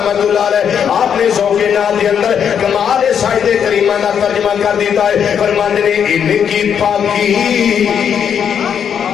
اللہ علیہ آپ نے ذوق نعت کے اندر کمال سائد کریمہ کا ترجمہ کر دیتا ہے، فرماتے ہیں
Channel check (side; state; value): right; quieter; 8.0 dB